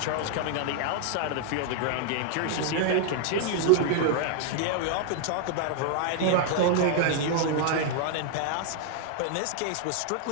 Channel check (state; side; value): different; both; correlation 0.00